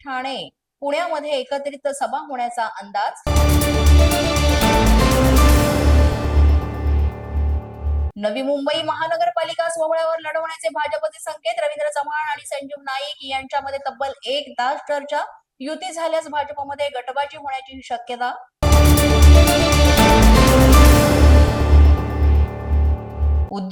ठाणे, पुण्यामध्ये एकत्रित सभा होण्याचा अंदाज. नवी मुंबई महानगरपालिका सोहळ्यावर लढवण्याचे भाजपचे संकेत. रवींद्र चव्हाण आणि संजीव नाईक यांच्यामध्ये तब्बल 1 तास चर्चा. युती झाल्यास भाजपमध्ये गटबाजी होण्याची शक्यता.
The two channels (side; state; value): both; identical; correlation 1.00